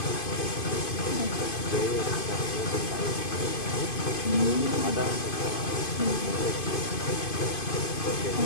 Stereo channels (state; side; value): late; right; 2.5 ms